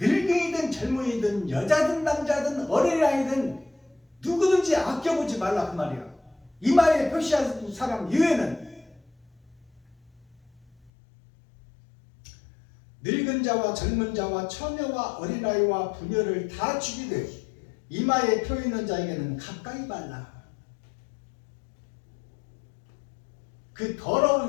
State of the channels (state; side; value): drops out; right; at 10.9 s